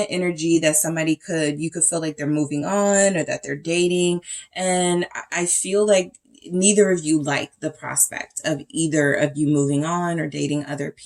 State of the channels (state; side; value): identical; both; correlation 1.00